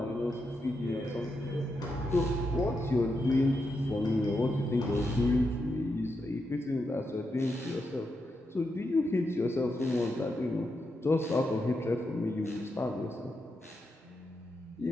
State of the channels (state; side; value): normal; both; correlation 0.85